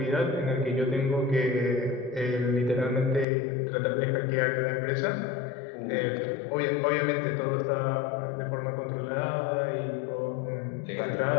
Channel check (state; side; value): drops out; right; at 3.2 s